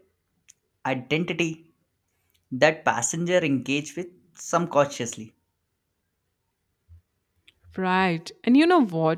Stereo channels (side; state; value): both; identical; correlation 1.00